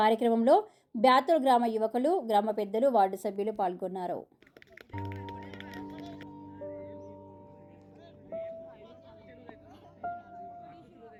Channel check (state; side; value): identical; both; correlation 1.00